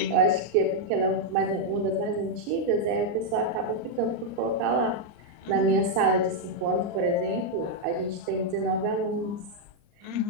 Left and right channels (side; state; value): left; late; 39 ms